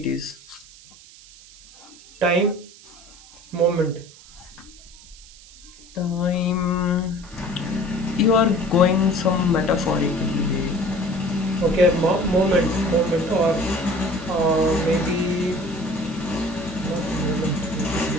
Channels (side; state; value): right; noise; hiss, 22 dB below the sound